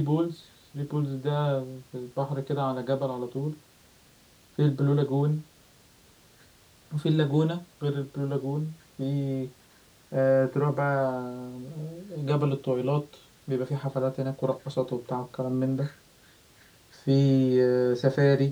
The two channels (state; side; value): identical; both; correlation 1.00